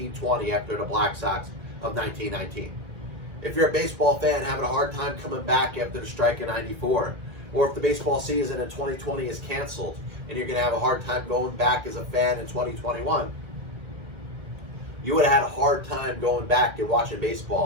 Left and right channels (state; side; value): late; left; 1.7 ms